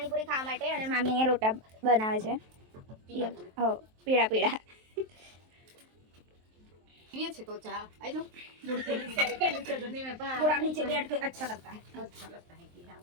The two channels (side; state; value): left; late; 23 ms